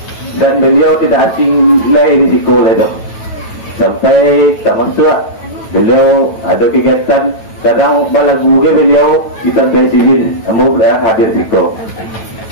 Dan beliau tidak asing lagi risiko itu. Sampai termasuk beliau ada kegiatan kadang balagu ke beliau kita presiden kamu hadir risiko.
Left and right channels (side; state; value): right; late; 9.1 ms